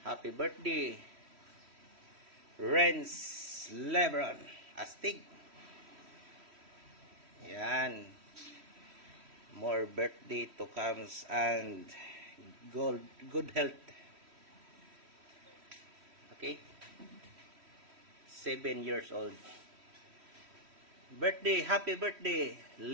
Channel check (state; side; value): late; left; 3.1 ms